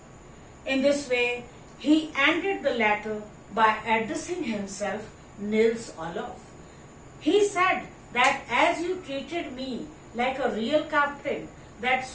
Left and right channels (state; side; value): identical; both; correlation 1.00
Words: In this way, he ended the letter by addressing himself Nils Olof. He said that as you treated me like a real captain,